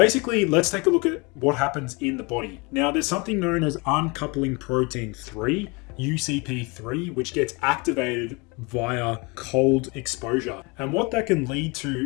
let's take a look at what happens in the body. Now, there's something known as uncoupling protein 3, UCP3, which gets activated via cold exposure. And what that can lead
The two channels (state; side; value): quieter; right; 28.4 dB